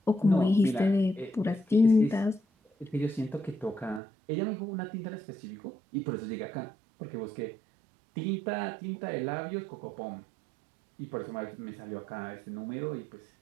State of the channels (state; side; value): drops out; left; at 4.0 s